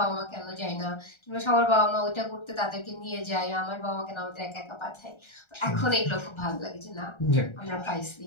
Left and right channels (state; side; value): late; right; 1.3 ms